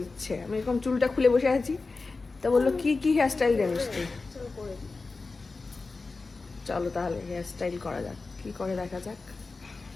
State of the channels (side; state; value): right; quieter; 3.9 dB